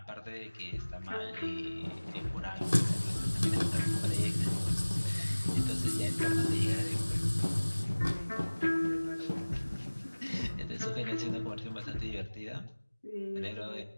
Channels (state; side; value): inverted; both; correlation -1.00